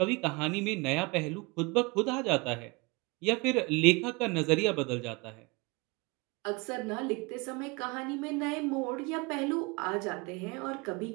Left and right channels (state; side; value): quieter; left; 26.7 dB